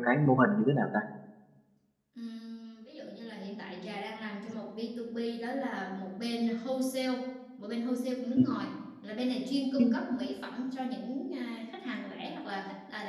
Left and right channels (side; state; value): both; identical; correlation 1.00